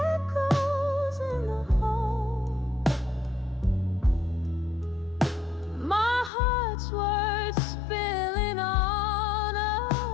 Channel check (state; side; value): drops out; right; at 6.3 s